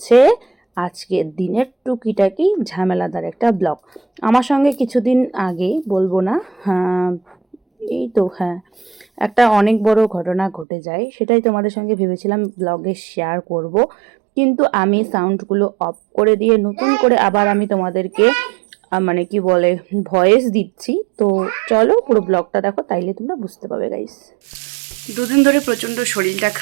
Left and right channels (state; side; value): drops out; left; at 10.7 s